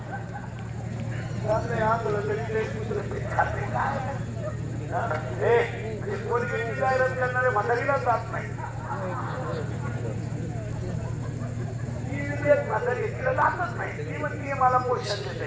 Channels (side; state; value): both; identical; correlation 1.00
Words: करणारे म्हातारीला जात नाही म्हातारी तिला जातच नाही ती म्हणते मला पोषण देते